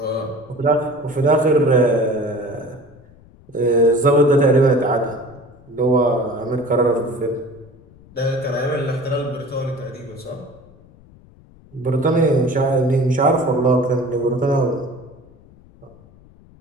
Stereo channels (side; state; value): left; noise; rumble, 26 dB below the sound